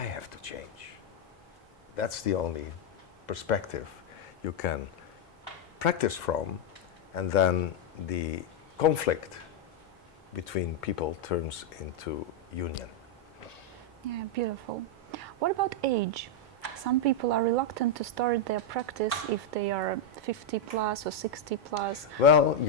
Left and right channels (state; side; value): normal; both; correlation 0.00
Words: have to change. That's the only perspective you can practice from, and then the conflict between people turns into union. Yeah, beautiful. What about age? Some people are reluctant to start their practice if they are 50 plus or 60 plus. Well,